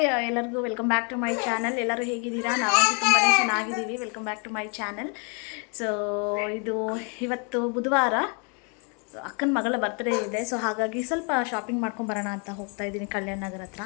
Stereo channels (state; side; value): quieter; right; 36.8 dB